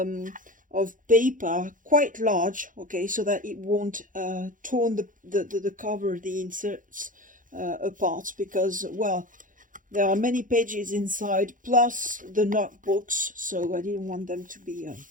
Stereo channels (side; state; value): left; late; 0.39 ms